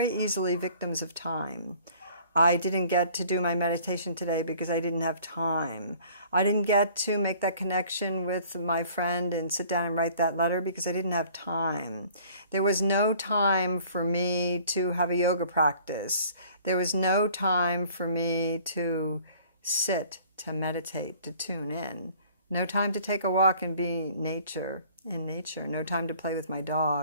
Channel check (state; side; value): inverted; both; correlation -0.53